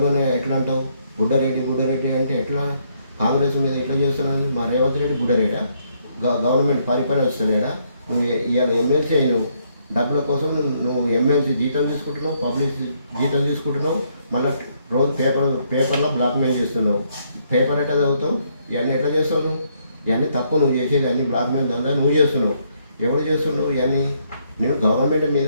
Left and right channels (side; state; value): both; inverted; correlation -0.72